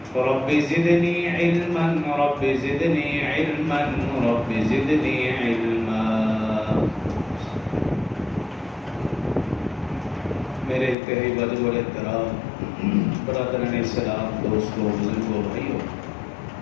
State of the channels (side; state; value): right; drops out; at 11.0 s